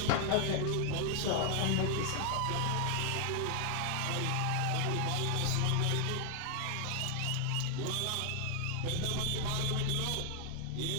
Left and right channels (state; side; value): different; both; correlation 0.00